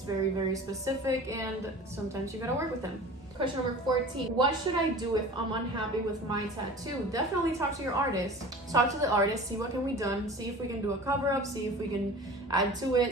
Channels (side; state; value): both; normal; correlation 0.39